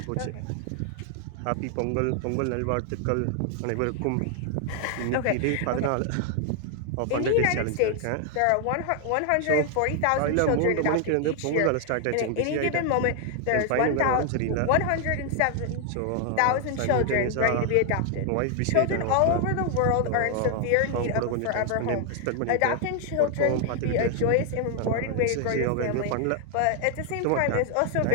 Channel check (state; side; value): different; both; correlation 0.00